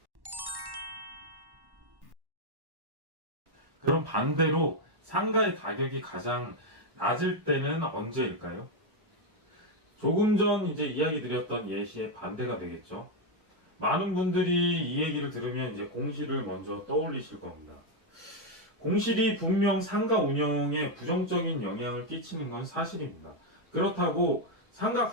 그럼 반대로 상가의 가격이 가장 낮을 때는 언제일까요? 조금 전 이제 이야기 드렸던 예시의 반대가 되겠죠. 많은 분들이 이 얘기를 들으면 이제 공실을 먼저 떠올리실 겁니다. 공실이 분명 상가 운영에 부정적인 영향을 끼치는 건 사실입니다. 그렇다고 상가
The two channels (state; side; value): late; left; 1.1 ms